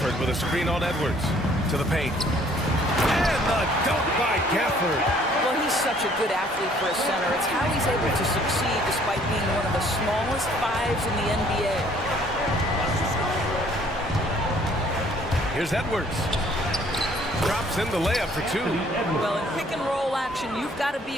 with a screen on Edwards. To the paint. And the dunk by Gafford. Well, he's such a good athlete for a center. It's how he's able to succeed despite being one of the smallest 5s in the NBA. Here's Edwards. Drops in the layup for 2. Well, in pick and roll action, you've got to be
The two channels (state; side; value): normal; both; correlation 0.59